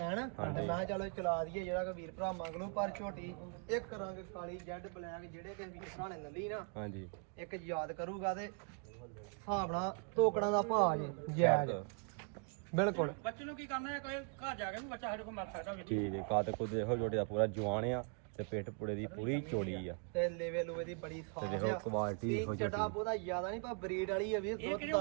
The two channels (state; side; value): quieter; left; 39.7 dB